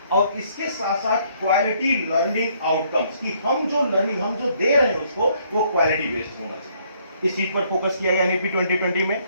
और इसके साथ साथ क्वालिटी लर्निंग आउटकम्स, कि हम जो लर्निंग हम जो दे रहे हैं उसको वो क्वालिटी बेस्ड होना चाहिए। इस चीज पर फोकस किया गया एनईपी 2020 में।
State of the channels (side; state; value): both; inverted; correlation -0.67